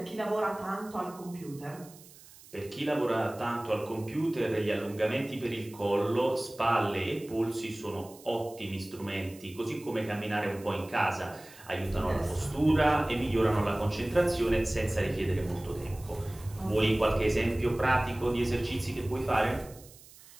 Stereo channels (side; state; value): right; noise; hiss, 21 dB below the sound